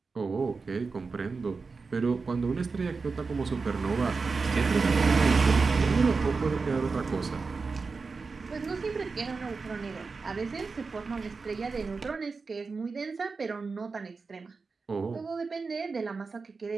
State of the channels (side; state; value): left; quieter; 4.5 dB